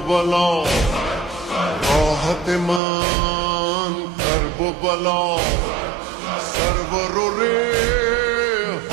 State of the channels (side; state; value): left; drops out; at 2.8 s